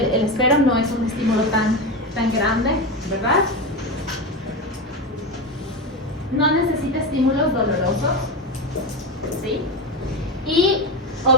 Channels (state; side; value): normal; both; correlation 0.18